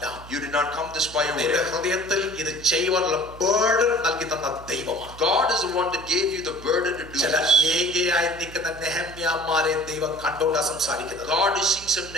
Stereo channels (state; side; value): noise; right; hum, 17 dB below the sound